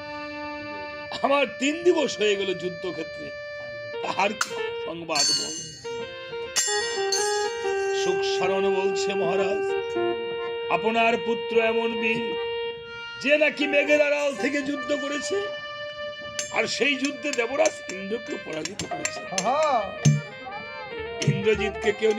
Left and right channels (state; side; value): identical; both; correlation 1.00